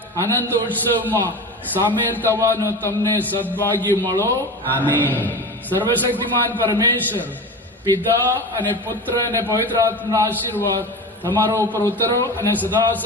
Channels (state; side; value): normal; both; correlation 0.29